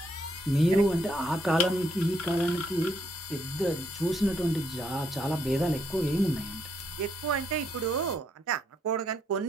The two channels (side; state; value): both; normal; correlation 0.74